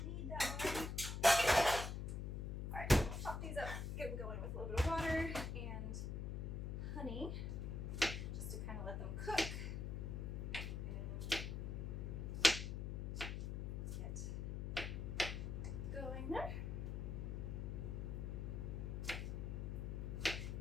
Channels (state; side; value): noise; left; hum, 3 dB below the sound